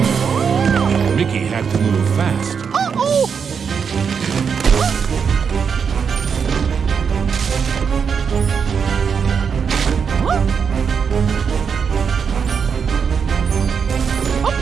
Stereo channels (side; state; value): left; quieter; 6.5 dB